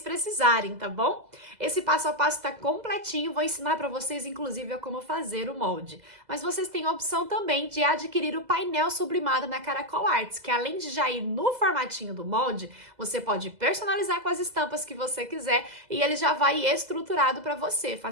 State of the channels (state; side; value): late; left; 2.0 ms